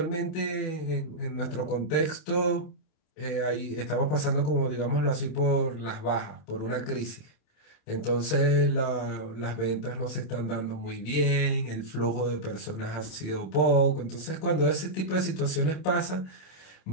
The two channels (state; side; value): late; right; 27 ms